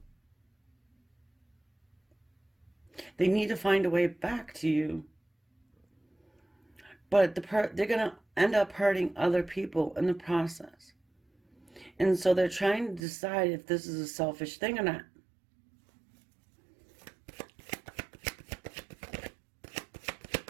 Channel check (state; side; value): drops out; left; at 13.0 s